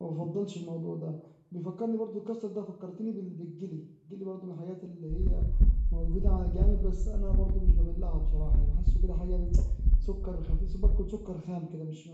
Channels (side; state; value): both; identical; correlation 1.00